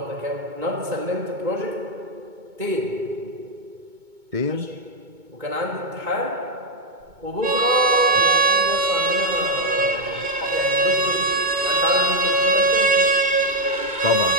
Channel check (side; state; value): left; late; 2.2 ms